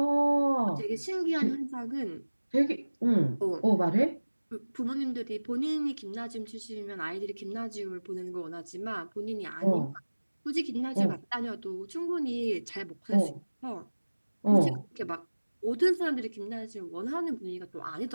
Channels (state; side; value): inverted; both; correlation -1.00